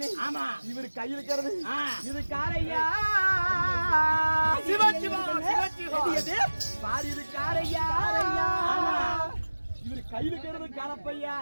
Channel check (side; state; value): both; inverted; correlation -1.00